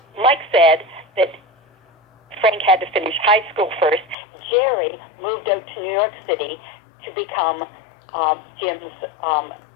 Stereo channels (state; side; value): drops out; right; at 4.2 s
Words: Mike said that Frank had to finish high school first. Jerry moved out to New York City to become Jim's